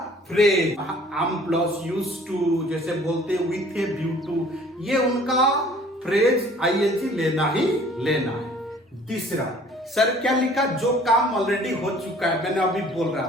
phrase, am plus use to, जैसे बोलते विथ ए व्यू टू, ये उनका फ्रेज आईएनजी लेना ही लेना है। तीसरा, सर क्या लिखा, जो काम ऑलरेडी हो चुका है, मैंने अभी बोल रहा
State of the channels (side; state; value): both; normal; correlation 0.53